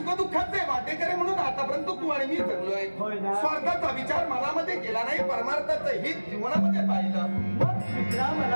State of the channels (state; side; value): inverted; both; correlation -1.00